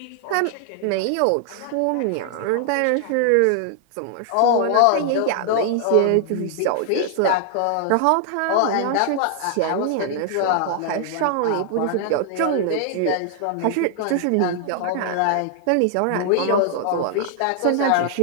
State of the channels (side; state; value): both; different; correlation 0.00